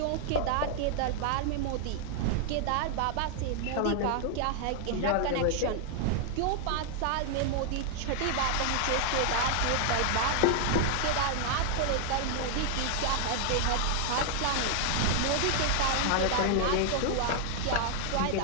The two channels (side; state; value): both; different; correlation 0.00